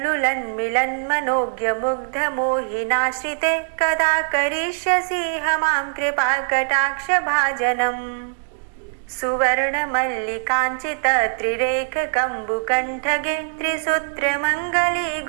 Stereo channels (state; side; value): silent; left; digital silence